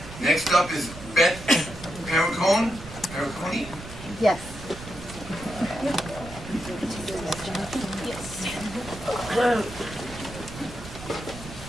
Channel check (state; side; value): noise; right; rumble, 13 dB below the sound